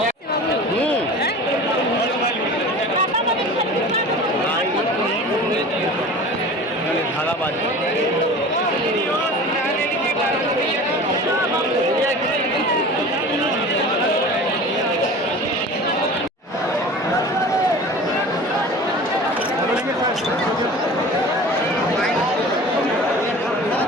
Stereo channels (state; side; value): normal; both; correlation 0.38